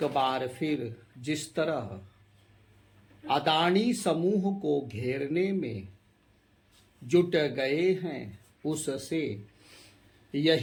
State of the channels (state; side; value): identical; both; correlation 1.00